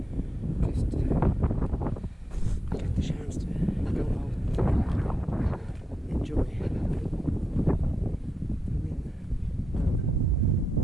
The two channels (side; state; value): both; normal; correlation 0.87